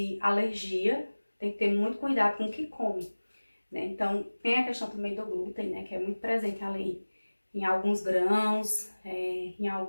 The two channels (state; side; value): inverted; both; correlation -1.00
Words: alergia tem que ter muito cuidado com o que come, né? Então, tem a questão também do glúten, né, que é muito presente ali em alguns grãos, em